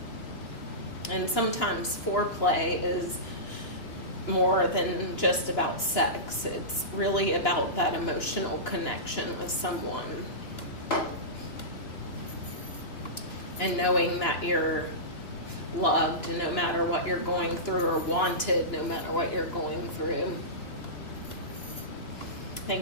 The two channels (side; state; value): right; late; 2.9 ms